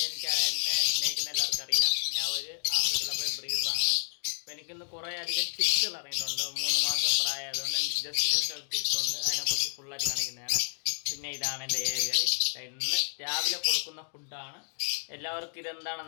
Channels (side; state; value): right; silent; digital silence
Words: എനിക്ക് എന്നെ സ്നേഹിക്കുന്ന എല്ലാവർക്കും അറിയാം, ഞാൻ ഒരു ആഫ്രിക്കയിലെ ബ്രീഡറാണ്. അപ്പോൾ എനിക്കിന്ന് കുറേ അധികം ടിപ്സുകൾ ഇറങ്ങിയിട്ടുണ്ട്. 3 മാസം പ്രായമായതുകൊണ്ട് ജസ്റ്റ് ടിപ്സുണ്ട്, അതിനെക്കുറിച്ച് ഫുള്ളായിട്ട് കാണിക്കുന്നതാണ്. പിന്നെ ഇതാണ് എൻ്റെ ഏരിയർ. ഇന്ന് രാവിലെ കൊടുക്കുന്ന ഫുഡാണ്. എല്ലാവർക്കും